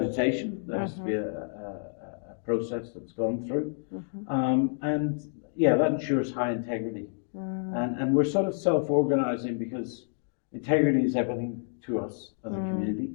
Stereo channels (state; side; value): silent; right; digital silence